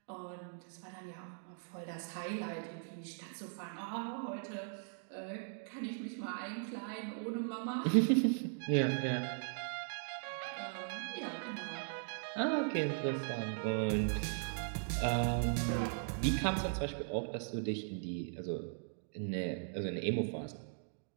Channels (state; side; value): silent; left; digital silence